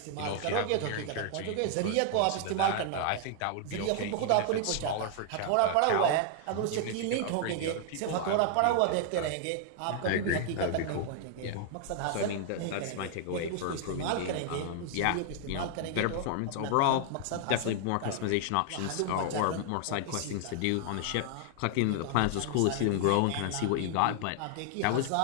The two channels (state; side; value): different; both; correlation 0.00